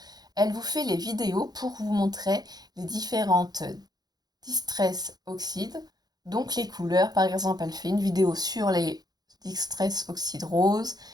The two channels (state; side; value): late; left; 0.19 ms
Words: Elle vous fait les vidéos pour vous montrer les différentes distress oxydes, donc les couleurs. Par exemple, elle fait une vidéo sur les distress oxydes roses,